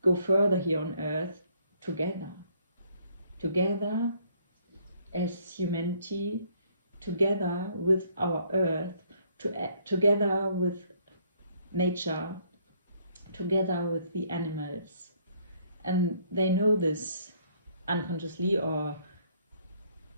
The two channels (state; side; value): inverted; both; correlation -0.66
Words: go further here on earth together as humanity, together with our earth, together with nature, together with the animals. And they know this unconsciously or